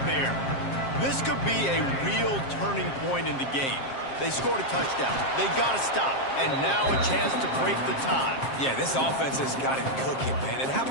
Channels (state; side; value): late; right; 7.5 ms